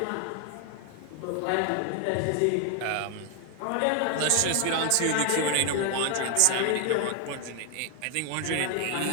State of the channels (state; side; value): different; both; correlation 0.00